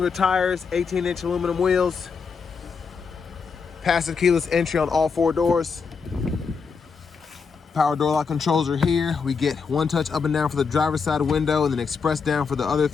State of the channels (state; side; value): quieter; right; 5.5 dB